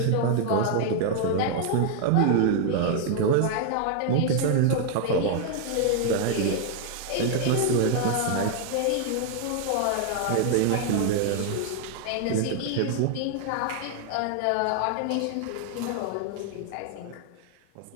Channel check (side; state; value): both; different; correlation 0.00